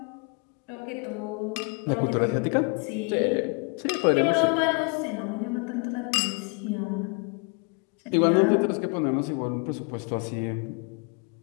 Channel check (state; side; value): quieter; right; 33.4 dB